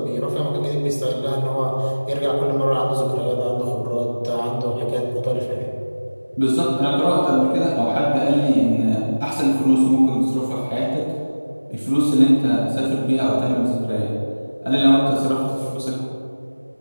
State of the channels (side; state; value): both; inverted; correlation -1.00